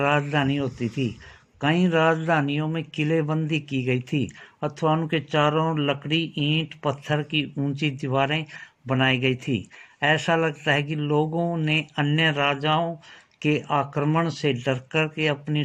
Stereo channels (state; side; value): identical; both; correlation 1.00